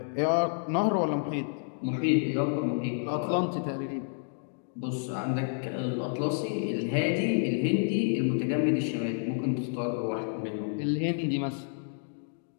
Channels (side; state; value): right; silent; digital silence